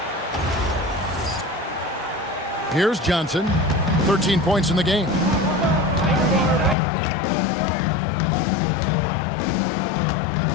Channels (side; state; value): right; drops out; at 6.8 s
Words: Here's Johnson. 13 points in the game.